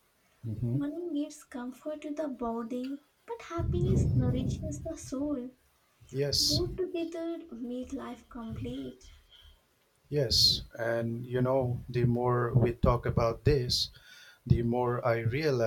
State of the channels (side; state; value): both; identical; correlation 1.00